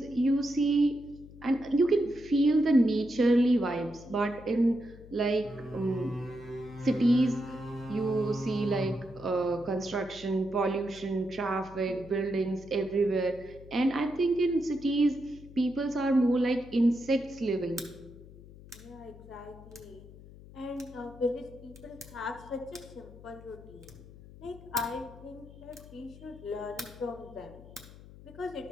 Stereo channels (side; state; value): left; noise; hum, 19 dB below the sound